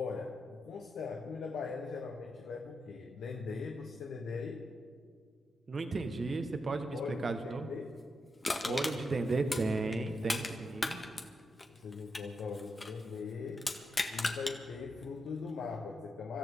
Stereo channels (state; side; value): normal; both; correlation 0.84